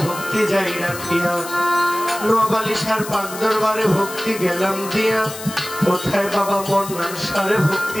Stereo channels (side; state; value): left; noise; hiss, 12 dB below the sound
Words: ভক্তি যাই রাখিয়া। নোয়াবালিশার পাক দরবারে ভক্তি গেলাম দিয়া, কোথায় বাবা মন্নান সারে